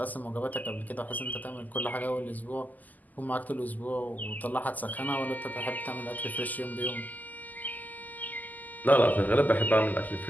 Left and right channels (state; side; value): late; right; 0.081 ms